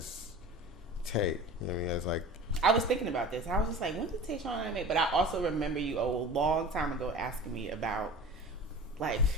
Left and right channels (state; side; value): normal; both; correlation 0.38